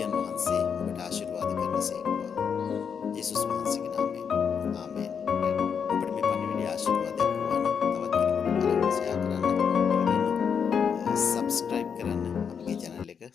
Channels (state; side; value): quieter; right; 6.9 dB